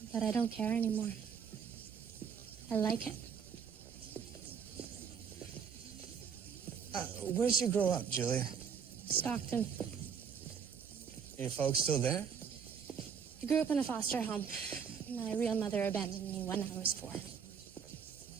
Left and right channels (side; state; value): left; quieter; 6.9 dB